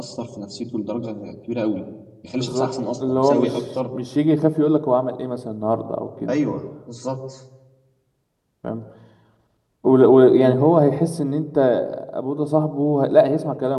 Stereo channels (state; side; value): identical; both; correlation 1.00